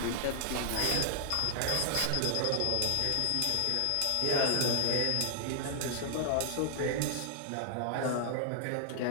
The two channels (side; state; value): both; different; correlation 0.00